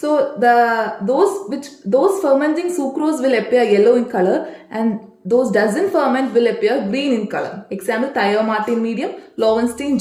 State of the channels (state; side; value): identical; both; correlation 1.00